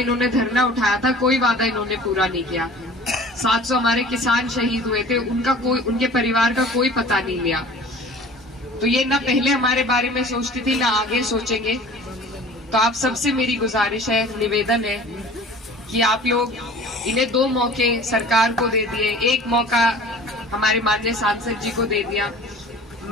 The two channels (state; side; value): normal; both; correlation 0.45